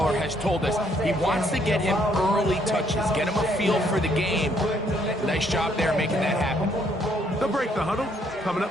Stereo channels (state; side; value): normal; both; correlation 0.69